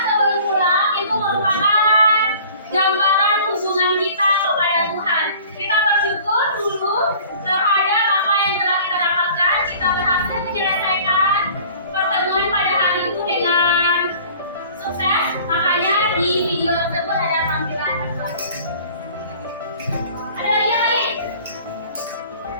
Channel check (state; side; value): inverted; both; correlation -0.48